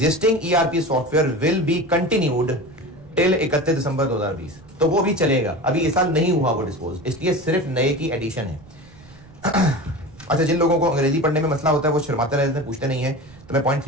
ERP software will be continued till 31 दिसंबर 2020, तो वो भी चलेगा। अभी इस साल नहीं हुआ वो डिस्पोज, इसलिए सिर्फ नए की एडिशन है। अच्छा, जिन लोगों को अंग्रेजी पढ़ने में मसला होता है वो शर्माते रहते हैं, पूछते नहीं है, तो मैं पॉइंट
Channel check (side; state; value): right; noise; rumble, 23 dB below the sound